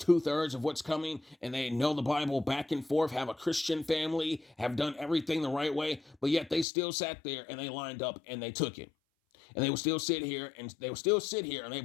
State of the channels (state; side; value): drops out; right; at 6.7 s